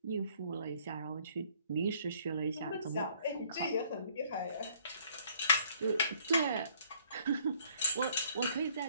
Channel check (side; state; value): both; inverted; correlation -0.62